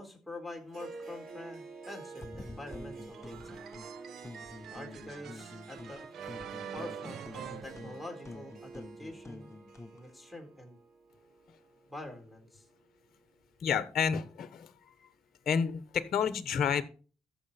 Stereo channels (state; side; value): quieter; right; 4.8 dB